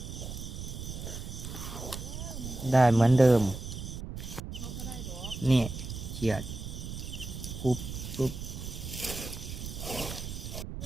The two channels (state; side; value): noise; right; rumble, 8 dB below the sound